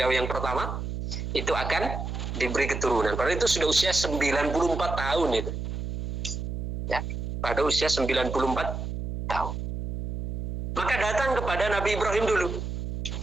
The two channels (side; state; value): right; noise; hum, 4 dB below the sound